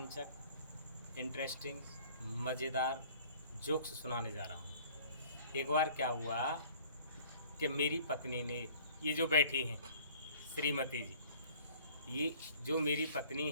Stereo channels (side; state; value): both; inverted; correlation -0.52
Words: इंटरेस्टिंग, मज़ेदार जोक्स सुनाने जा रहा हूं। एक बार क्या हुआ कि मेरी पत्नी ने, ये जो बैठी हैं श्रीमती जी, ये जो मेरी पत्नी